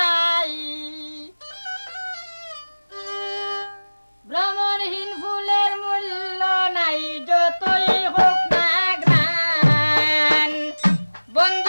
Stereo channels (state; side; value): inverted; both; correlation -1.00